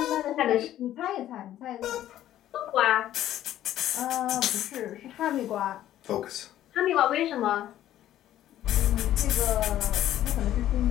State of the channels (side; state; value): right; quieter; 12.6 dB